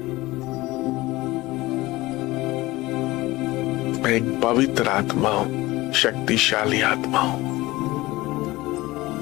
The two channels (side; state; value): right; quieter; 19.5 dB